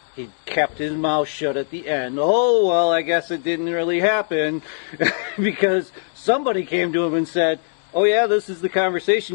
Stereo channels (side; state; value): right; silent; 65 dB below the other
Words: He kept his mouth shut at the end. Oh, well, I guess it didn't really happen because somebody came to him and said, oh, yeah, this is the